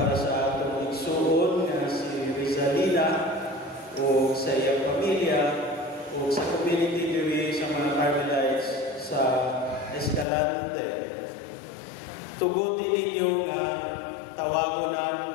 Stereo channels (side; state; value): right; drops out; at 10.2 s